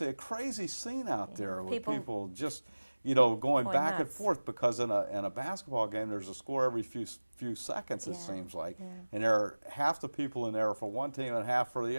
crazy scene out there with people just, going back and forth because in a basketball game, there's a score every few seconds, it seems like, and there are half the people in there for one team and half for the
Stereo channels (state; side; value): inverted; both; correlation -1.00